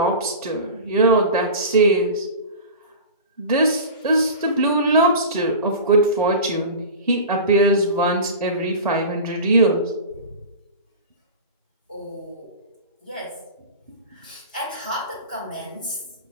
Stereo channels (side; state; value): both; inverted; correlation -0.32